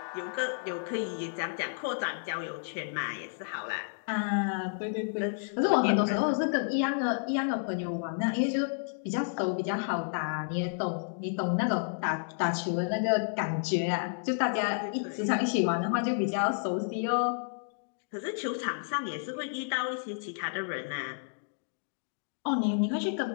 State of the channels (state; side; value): silent; right; digital silence